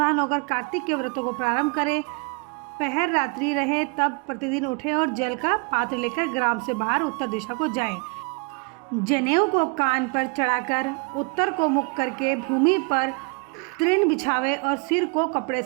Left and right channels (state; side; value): quieter; left; 34.9 dB